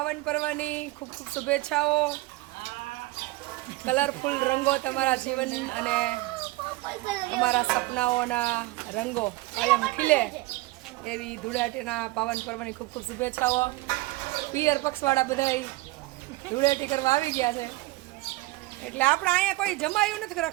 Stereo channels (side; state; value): left; quieter; 20.4 dB